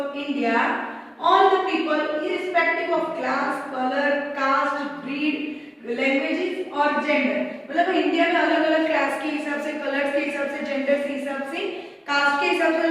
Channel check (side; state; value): both; identical; correlation 1.00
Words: India, all the people irrespective of class, color, caste, breed, languages और gender. मतलब इंडिया में अलग अलग क्लास के हिसाब से, कलर्स के हिसाब से, जेंडर के हिसाब से, कास्ट के हिसाब से